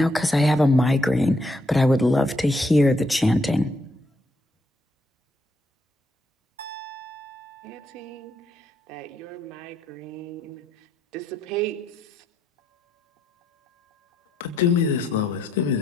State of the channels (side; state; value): both; normal; correlation 0.75